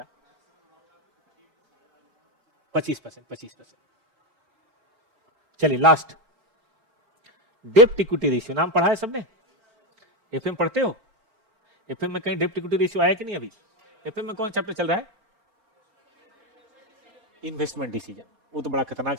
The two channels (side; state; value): left; late; 4.4 ms